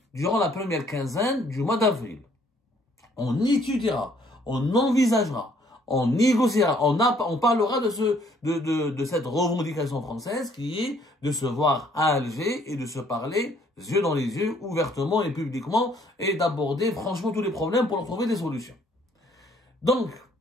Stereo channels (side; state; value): both; normal; correlation 0.63